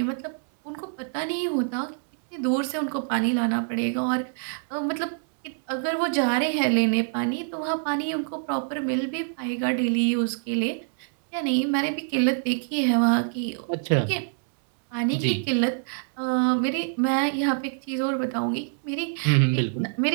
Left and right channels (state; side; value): silent; left; 61 dB below the other